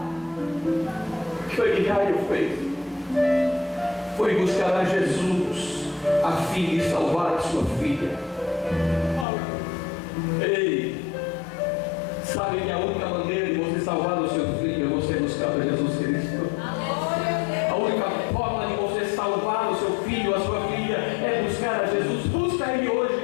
O que foi que Jairo fez? Foi buscar a Jesus a fim de salvar a sua filha. Ei, sabe que a única maneira de você salvar o seu filho é você buscar a Jesus Cristo. A única forma de você salvar o seu filho, a sua filha, é buscar a Jesus. Busca Ele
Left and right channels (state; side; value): drops out; right; at 9.2 s